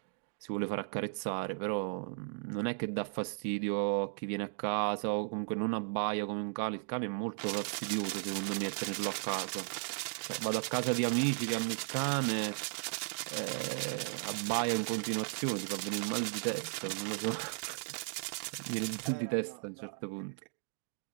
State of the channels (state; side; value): silent; left; 54 dB below the other